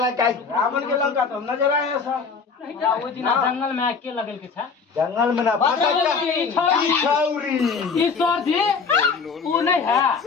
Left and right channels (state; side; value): quieter; right; 5.2 dB